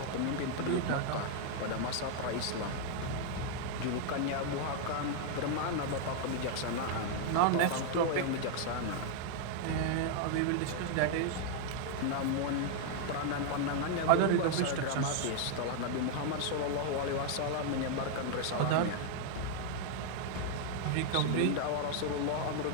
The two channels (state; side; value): different; both; correlation 0.00